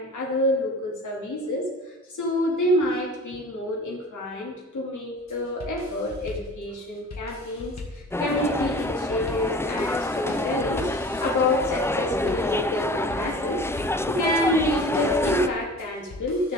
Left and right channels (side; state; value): both; normal; correlation 0.40